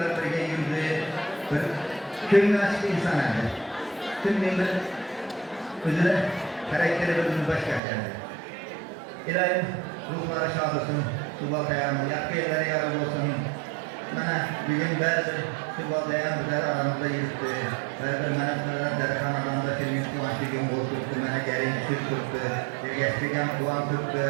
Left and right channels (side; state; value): left; drops out; at 7.8 s